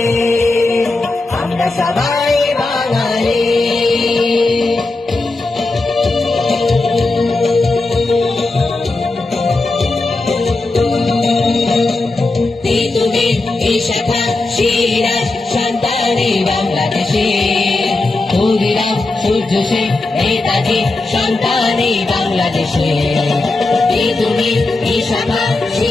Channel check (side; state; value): right; quieter; 3.2 dB